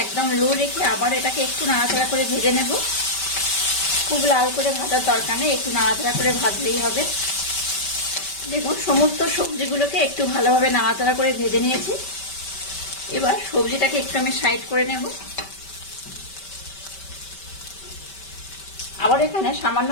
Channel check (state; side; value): late; right; 5.2 ms